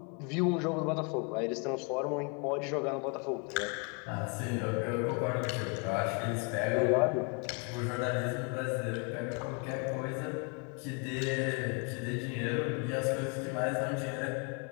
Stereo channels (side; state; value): right; quieter; 34.5 dB